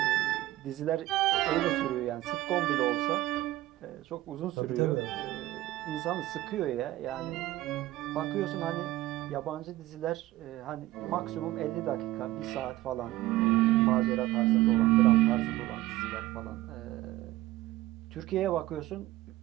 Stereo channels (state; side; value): quieter; left; 16.8 dB